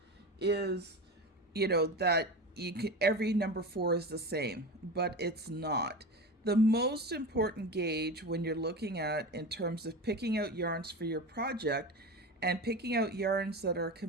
is, that every number 4 is the same, but it's not. The most important gauge when you're looking at in terms of picking out yarns for your project and picking out yarns that are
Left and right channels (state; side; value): normal; both; correlation 0.26